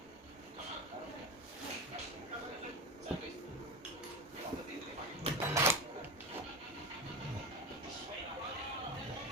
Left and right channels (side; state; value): both; normal; correlation 0.22